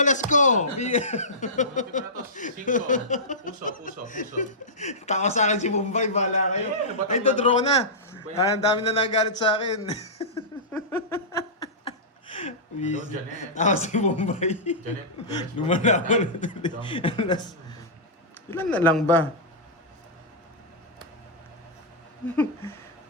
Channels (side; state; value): both; normal; correlation -0.15